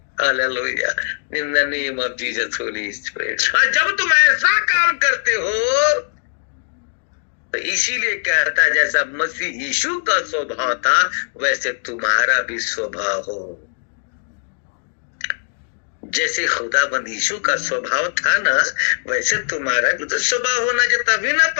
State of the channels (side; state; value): right; silent; digital silence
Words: Hallelujah. In the name of Jesus Holi spirit. जब तुम ऐसा काम करते हो तो इसीलिए कहता है जैसा मसीह यीशु का स्वभाव था वैसे तुम्हारा भी स्वभाव हो। जैसे खुदाबंद यीशु का स्वभाव था ना, वैसे तुम्हारा भी तो स्वभाव होना चाहिए। तभी ना